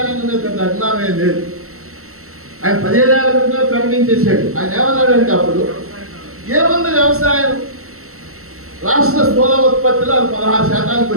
రంగం మీద పెద్ద అభిమానమే లేదు. ఆయన 15 ఏళ్ల క్రితమే ప్రకటించేశాడు. ఆయన ఏమన్నాడంటే అప్పుడు ఏముంది వ్యవసాయం, రాష్ట్ర స్థూల ఉత్పత్తిలో అది 16%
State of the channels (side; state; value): left; late; 0.63 ms